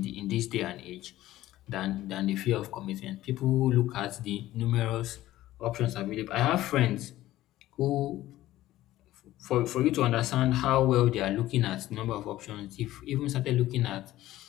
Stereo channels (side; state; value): right; quieter; 15.2 dB